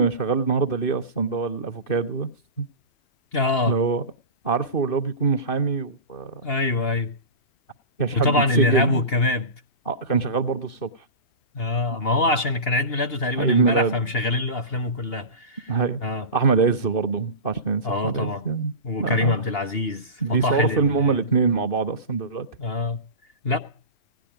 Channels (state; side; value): late; right; 2.8 ms